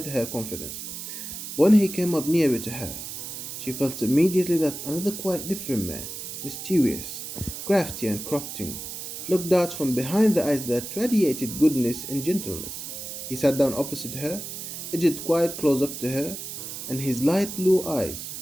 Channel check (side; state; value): right; noise; hiss, 8 dB below the sound